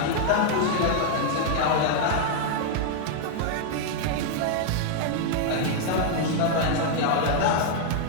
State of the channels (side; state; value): both; different; correlation 0.00